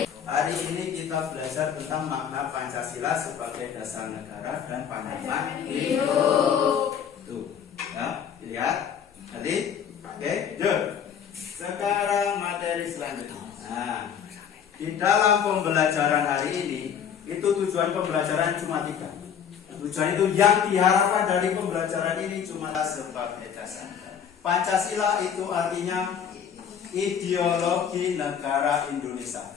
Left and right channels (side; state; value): right; quieter; 8.0 dB